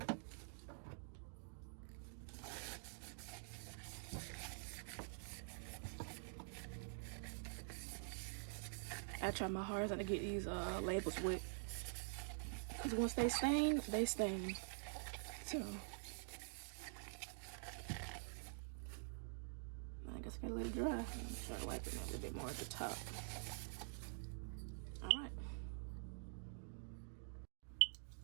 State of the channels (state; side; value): silent; left; digital silence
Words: I try my hardest not to get these labels wet, because once they stain, they stain. So I guess I gotta let it dry. Try to wipe it a little bit more at the top. All right.